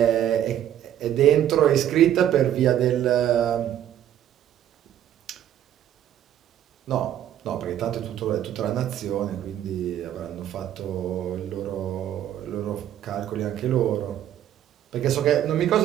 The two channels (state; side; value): quieter; left; 11.1 dB